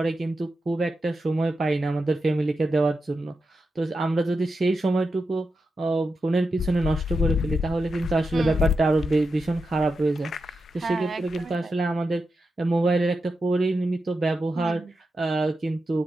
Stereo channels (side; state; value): both; normal; correlation 0.89